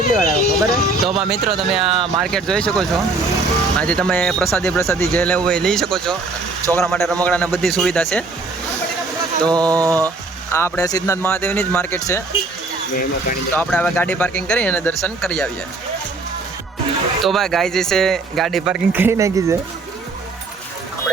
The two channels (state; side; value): quieter; left; 3.5 dB